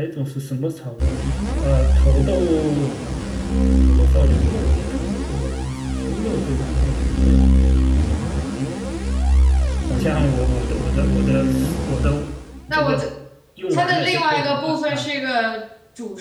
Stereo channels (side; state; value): both; identical; correlation 1.00